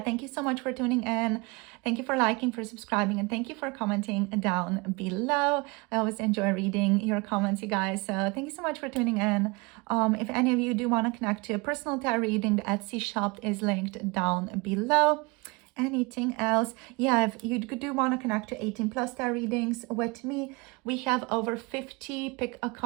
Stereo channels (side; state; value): left; quieter; 27.0 dB